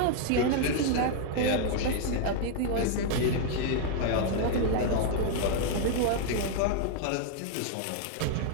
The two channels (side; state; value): both; different; correlation 0.00